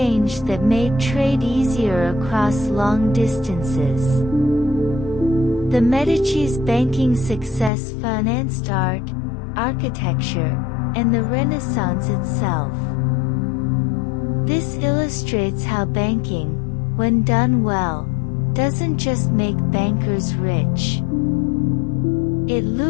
that made trade easier across long distances. The Medici's banking success financed art, architecture, and the Renaissance itself. This illustrates how banking, when done well, doesn't just make bankers rich. It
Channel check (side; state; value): right; drops out; at 7.7 s